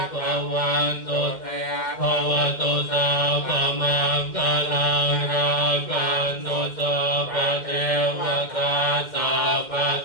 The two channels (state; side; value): late; right; 2.1 ms